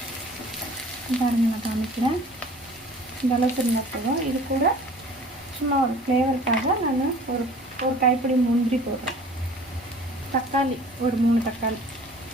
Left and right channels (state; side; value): normal; both; correlation 0.47